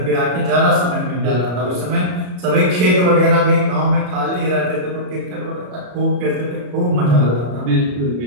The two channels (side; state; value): left; late; 33 ms